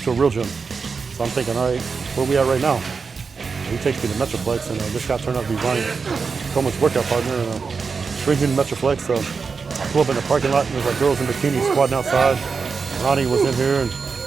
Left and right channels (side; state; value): left; quieter; 5.1 dB